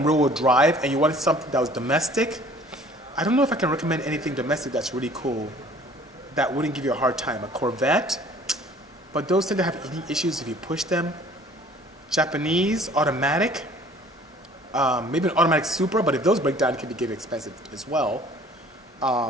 rear-wheel drive and you wanted something that was domestic, I don't know if I can recommend anything domestic that's really cool that wouldn't give you a hard time. A Corvette, but those tend to have eating issues if you push them. Japanese, automatic, maybe an automatic Supra, but if those break down, it can be getting expensive as well.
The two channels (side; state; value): both; normal; correlation 0.53